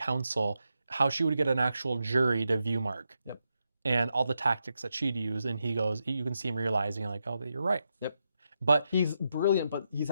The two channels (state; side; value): inverted; both; correlation -0.85